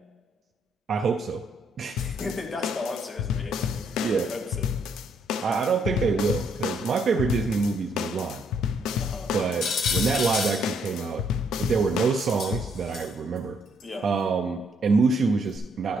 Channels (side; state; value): both; normal; correlation 0.70